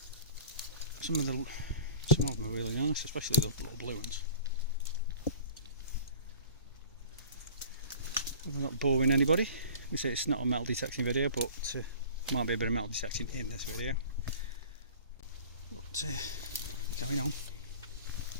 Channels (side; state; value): both; inverted; correlation -0.43